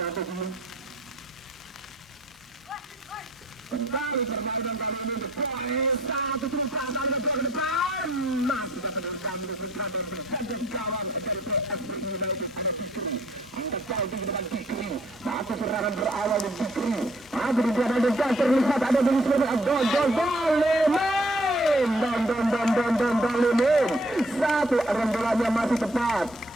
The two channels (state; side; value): normal; both; correlation 0.61